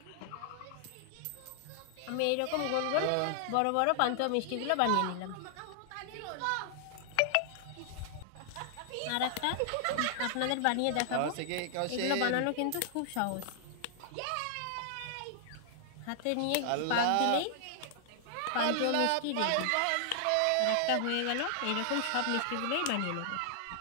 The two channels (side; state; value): both; different; correlation -0.01